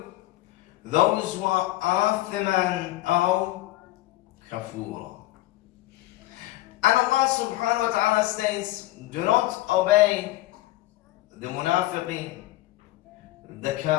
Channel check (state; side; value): quieter; right; 17.0 dB